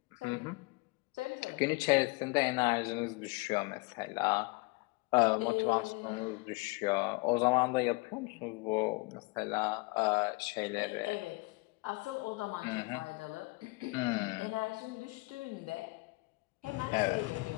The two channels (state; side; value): quieter; right; 26.3 dB